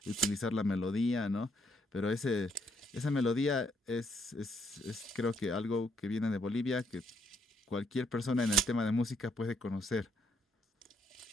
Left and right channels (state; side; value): normal; both; correlation 0.72